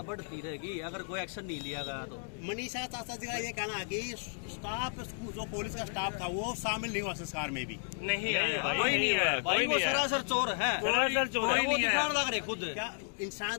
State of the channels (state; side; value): silent; right; digital silence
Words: बढ़ती रहेगी अगर कोई एक्शन नहीं लिया गया तो। मनीषा चाचा जी का ये कहना है कि स्टाफ जो पुलिस का स्टाफ था वो शामिल नहीं हुआ संस्कार में भी। नहीं आया, भाई, कोई नहीं आया। भाई वो सरासर चोर है, सरासर चोर है। वो दिखाने लग रहे खुद। क्या इंसान